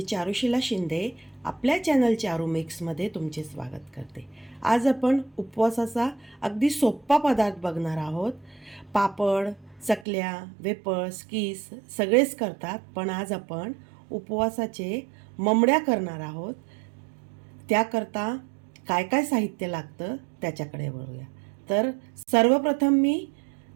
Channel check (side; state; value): left; drops out; at 10.1 s